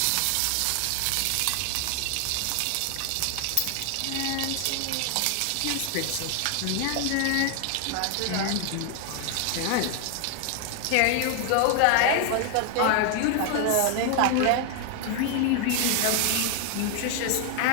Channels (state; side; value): different; both; correlation 0.00